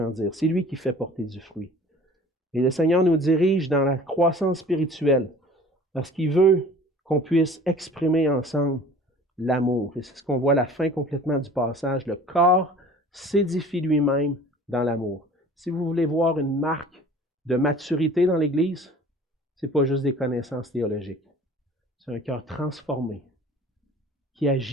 C'est lui qui fait porter du fruit. Et le Seigneur nous dirige dans la croissance spirituelle parce qu'il veut qu'on puisse exprimer ensemble l'amour. Et c'est ce qu'on voit à la fin complètement du passage. Le corps s'édifie lui-même dans l'amour. Si vous voulez voir une marque de maturité dans l'Église, ce n'est pas juste des connaissances théologiques. C'est un cœur transformé qui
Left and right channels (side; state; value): both; normal; correlation 0.46